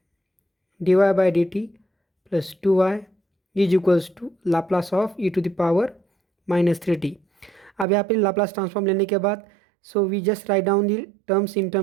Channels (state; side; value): drops out; left; at 7.9 s